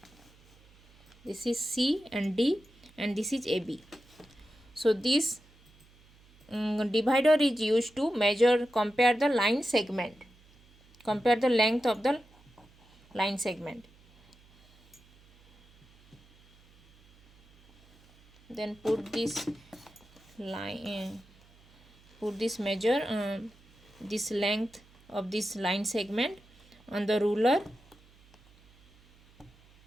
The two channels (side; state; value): right; noise; hum, 28 dB below the sound